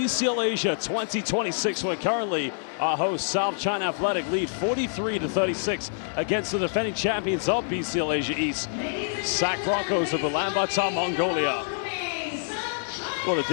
Asia 2026, where currently our host South China Athletic lead 43-36 against the defending champions of BCL Asia East, SAC Broncos of Ulaanbaatar, Mongolia. Well, the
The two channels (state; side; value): silent; right; digital silence